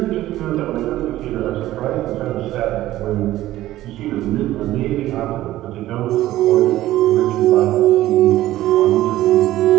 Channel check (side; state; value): left; quieter; 15.0 dB